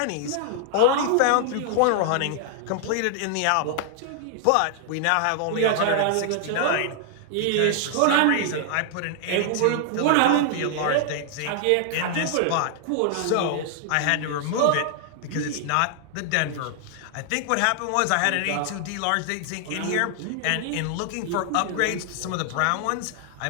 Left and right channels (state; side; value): different; both; correlation 0.00